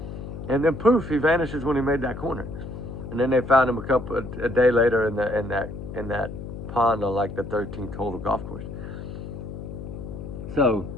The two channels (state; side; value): noise; left; hum, 9 dB below the sound